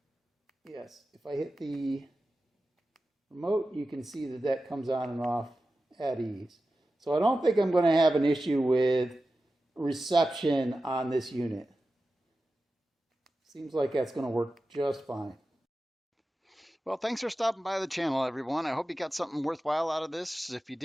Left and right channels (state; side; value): normal; both; correlation 0.93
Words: remote, you can see that comes on and off at ease. So I don't think I'm going to have an issue with reception on this unit. Seems like that's going to work just fine. Well, thanks for stopping by the channel, everyone. I hope you got something worthwhile out of this. If you